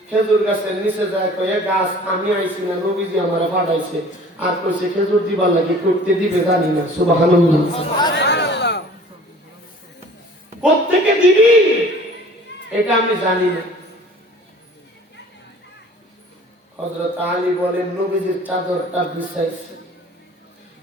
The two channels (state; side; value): normal; both; correlation 0.48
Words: খেজুর গাছের নিচে যায়, কয়ে গাছ আমি আইছি না, নবীজি আমার পাঠাইছে। আর কইছে খেজুর দিবার লাগে, করতে দিবে জানি না। সুবহানাল্লাহ। কোত্থেকে দিবি এটা আমি জানি না। হযরত আলী বলেন নবীজির চাদরটা বিছাইছে,